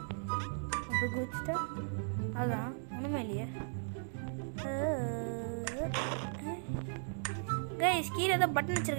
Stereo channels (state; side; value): silent; left; digital silence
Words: அப்போ குதிச்சுட்டா அதான் ஒன்றுமே இல்லையே. கைஸ் கீழே தான் பட்டன்